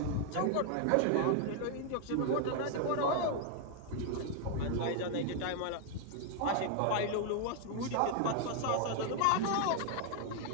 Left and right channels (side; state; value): both; different; correlation 0.00